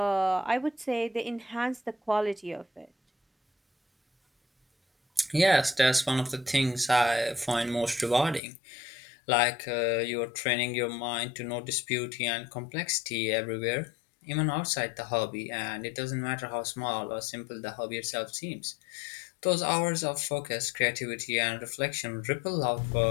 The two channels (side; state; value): right; drops out; at 8.4 s